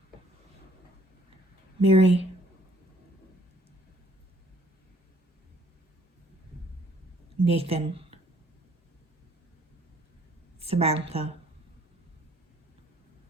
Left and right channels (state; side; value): normal; both; correlation 0.61